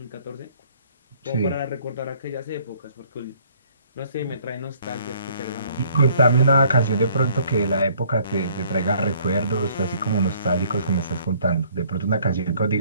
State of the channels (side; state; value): both; inverted; correlation -0.60